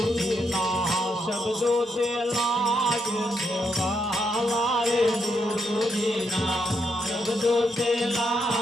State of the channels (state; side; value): normal; both; correlation 0.79